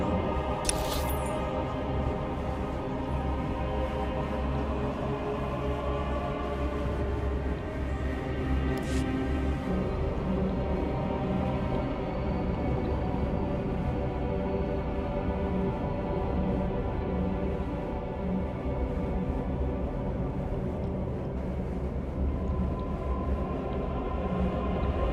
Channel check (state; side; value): identical; both; correlation 1.00